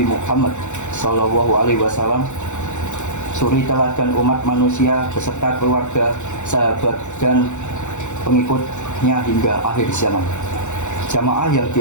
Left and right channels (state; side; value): late; right; 0.84 ms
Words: Muhammad Sallallahu Alaihi Wasallam, suri teladan umat manusia beserta keluarga, sahabat dan pengikutnya hingga akhir zaman. Jamaah yang